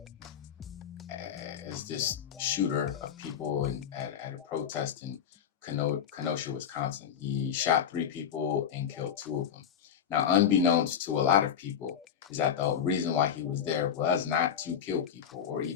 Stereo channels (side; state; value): right; quieter; 8.4 dB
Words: as this shooter of people at a protest in Kenosha, Wisconsin. He shot 3 people and killed 2 of them. Now, unbeknownst to a lot of people, is that the reason why he was there was not to kill people or